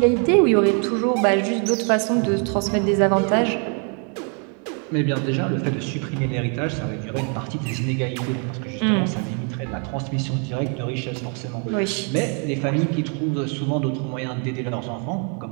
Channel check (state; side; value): quieter; left; 39.0 dB